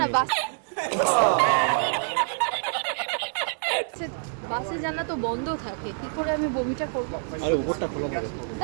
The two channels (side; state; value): left; silent; digital silence